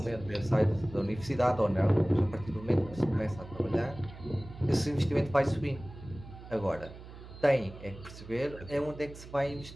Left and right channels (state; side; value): noise; right; hum, 15 dB below the sound